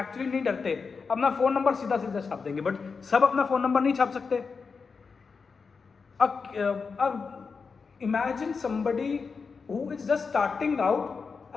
नहीं डरते, अपना फोन नंबर सीधा सीधा छाप देंगे, बट सब अपना फोन नंबर नहीं छाप सकते। अब imagine somebody who is just starting out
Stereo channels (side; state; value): right; quieter; 5.1 dB